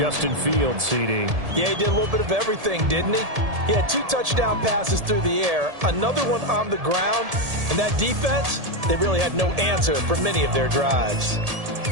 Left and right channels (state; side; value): late; left; 1.7 ms